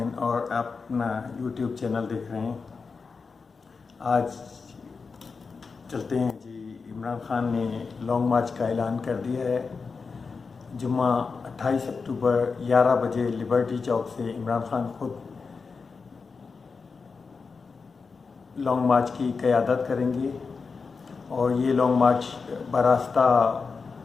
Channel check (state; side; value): quieter; right; 4.8 dB